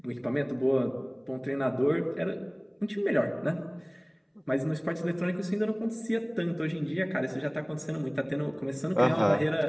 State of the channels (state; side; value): identical; both; correlation 1.00